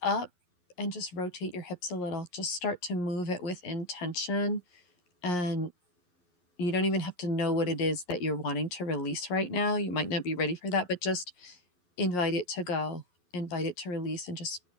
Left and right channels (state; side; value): late; right; 11 ms